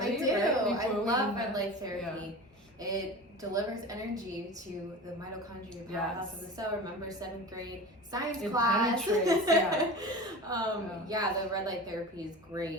I do. Right? I love red light therapy. Yeah. It delivers energy to the mitochondria powerhouse of the cell. Remember 7th grade science class? Penetrates, yeah, the red light therapy is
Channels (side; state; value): both; normal; correlation 0.33